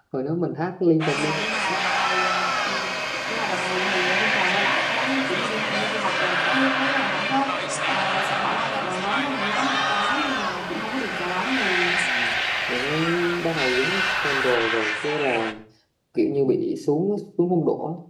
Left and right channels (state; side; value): identical; both; correlation 1.00